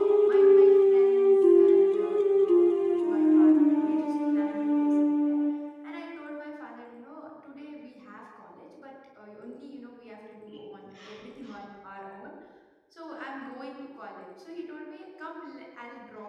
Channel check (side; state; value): both; identical; correlation 1.00